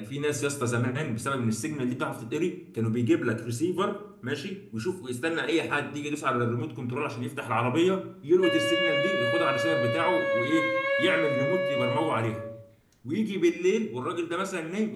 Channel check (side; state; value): both; identical; correlation 1.00